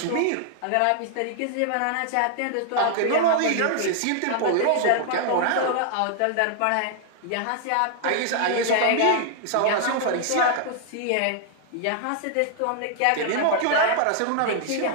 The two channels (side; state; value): both; different; correlation 0.00